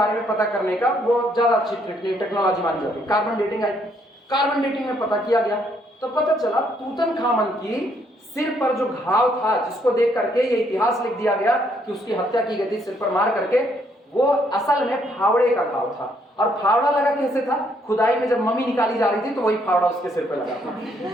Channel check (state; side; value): normal; both; correlation 0.70